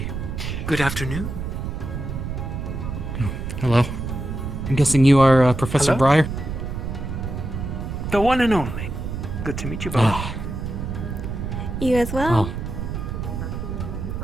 Good afternoon. Hello. I'm guessing you are Professor Hello? Briar? The one and only. Good to meet you both. You as well.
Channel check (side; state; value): right; noise; rumble, 5 dB below the sound